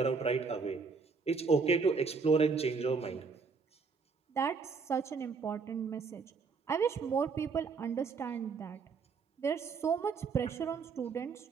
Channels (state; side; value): quieter; left; 5.0 dB